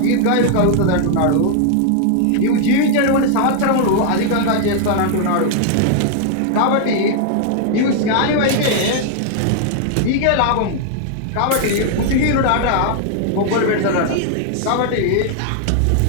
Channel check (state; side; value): different; both; correlation 0.00